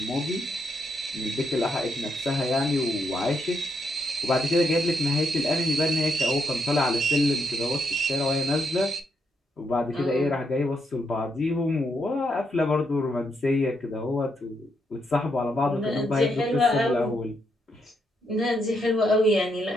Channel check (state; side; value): normal; both; correlation 0.78